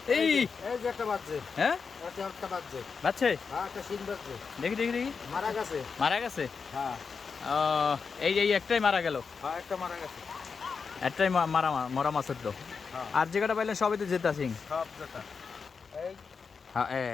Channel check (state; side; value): quieter; right; 5.4 dB